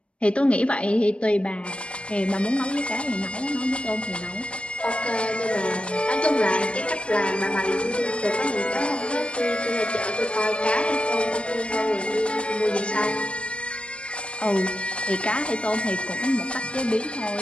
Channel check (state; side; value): late; right; 0.059 ms